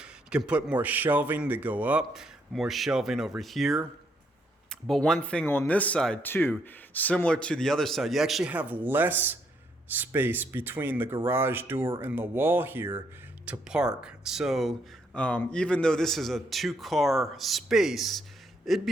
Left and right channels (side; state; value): both; normal; correlation 0.73